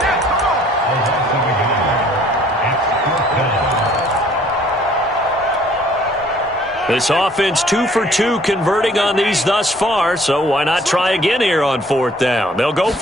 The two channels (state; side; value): normal; both; correlation 0.58